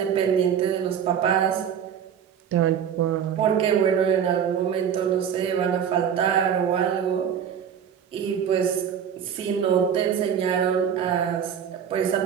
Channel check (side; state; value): left; quieter; 8.3 dB